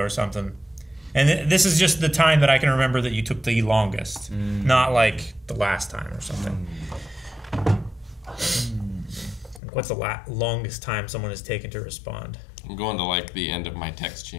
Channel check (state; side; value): drops out; right; at 9.6 s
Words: something, and this is just the time that I can remember that you took the longest, not like the last time or something. What's the longest time someone has taken to respond? I'm going to like the end of my text